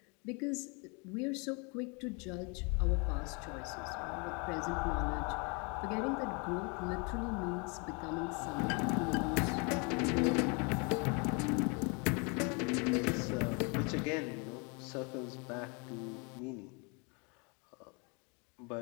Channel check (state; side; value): quieter; right; 32.8 dB